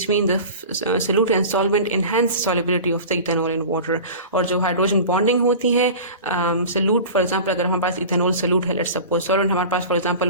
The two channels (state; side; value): inverted; both; correlation -0.35